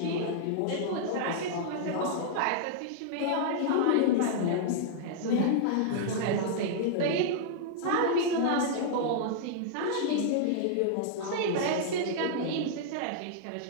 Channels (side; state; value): both; different; correlation -0.01